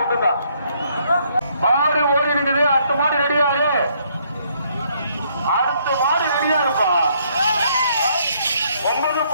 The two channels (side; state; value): both; inverted; correlation -0.69